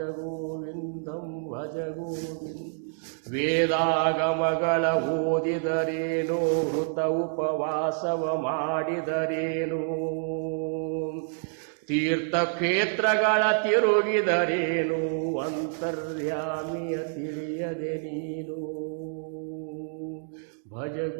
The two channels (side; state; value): left; silent; digital silence